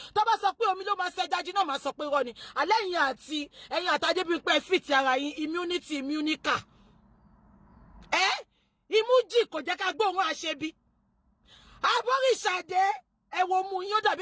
Tó bá sọ pé omi ló máa ṣe jájí náà máa sọ pé irọ́ ni. Àlẹ́ ẹ̀yin àti Adébímpé fit ara yín immunity immunica. Imújì kò jẹ́ ká gbóhùn àṣebí. Abóríṣàdé ẹ wo mú yín ó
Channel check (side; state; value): both; identical; correlation 1.00